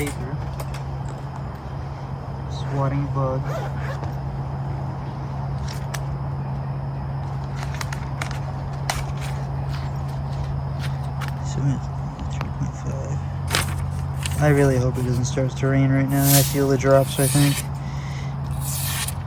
Swatting a bug. So 3.5. I really hope it doesn't start to rain right now. I feel the drops, I think.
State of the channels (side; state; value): both; identical; correlation 1.00